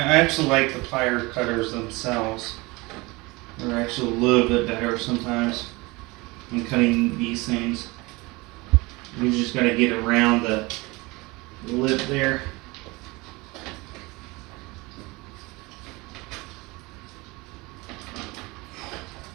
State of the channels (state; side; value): quieter; left; 23.9 dB